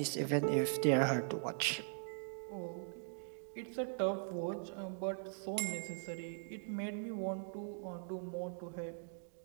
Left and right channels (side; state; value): left; silent; digital silence